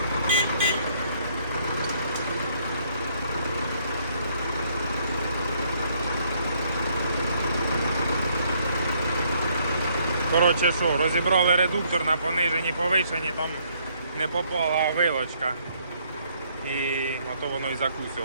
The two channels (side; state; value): both; inverted; correlation -0.68